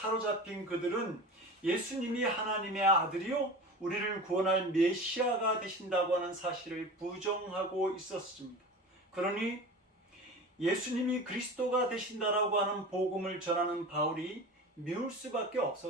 그들은 예수님이 하나님의 아들이요 우리를 구원할 메시아가 되신다고 하는 사실을 부정하고 있었습니다. 그러니 예수님이 그리스도가 되신다라고 하는 복음을 전하는 바울이 미울 수밖에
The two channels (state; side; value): normal; both; correlation 0.33